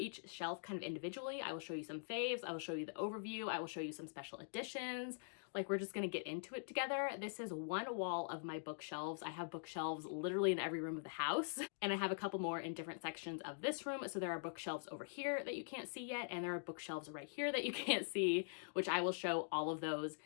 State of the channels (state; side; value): silent; right; digital silence